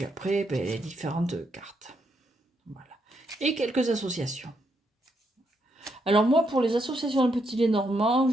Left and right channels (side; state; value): both; normal; correlation 0.78